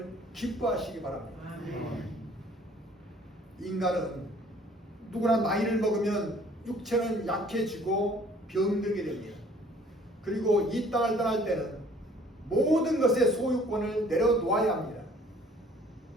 기뻐하시기 바랍니다. 아멘. 인간은 누구나 나이를 먹으면 육체는 약해지고 병들게 됩니다. 그리고 이 땅을 떠날 때는 모든 것의 소유권을 내려놓아야 합니다.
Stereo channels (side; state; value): both; normal; correlation 0.56